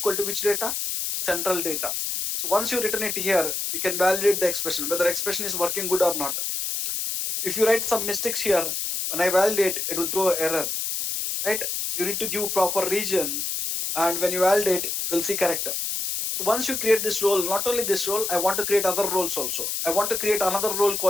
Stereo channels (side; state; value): left; noise; hiss, 2 dB below the sound